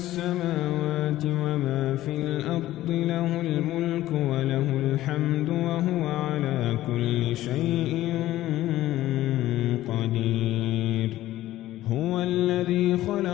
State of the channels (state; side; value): quieter; right; 14.9 dB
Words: وما في الأرض، له الملك وله الحمد وهو على كل شيء قدير. هو الذي